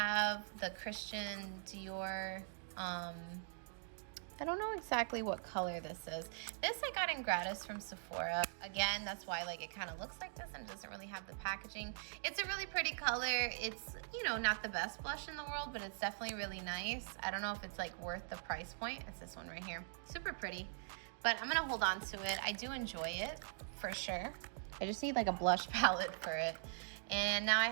the Christian Dior, I don't know exactly what color this is. This I got in gratis from Sephora. Again, that's why like it kind of looks like this and doesn't really have the packaging. It's a really pretty color. It's, you know, not the best blush in the world, but it's definitely really nice. I don't know if it's like worth the price point. It's this one right here. Super pretty, but I'm gonna hold on to it. I do enjoy it for sure. I just need like a blush palette for it. And now I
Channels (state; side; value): silent; left; digital silence